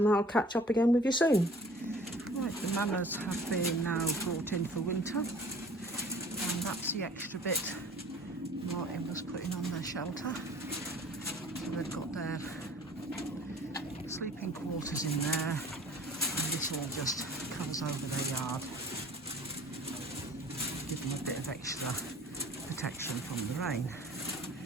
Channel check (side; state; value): both; normal; correlation 0.48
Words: I'll catch up again with you soon. Right, the manners have been now brought in for winter, and that's the extra bit Martin was putting on their shelter. So they've got their sleeping quarters in there, and this all just covers over their yard, give them a bit of extra protection from the rain.